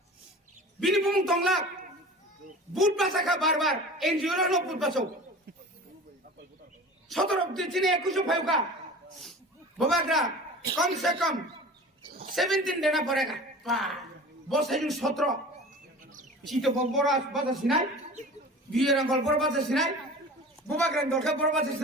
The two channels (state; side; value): normal; both; correlation 0.38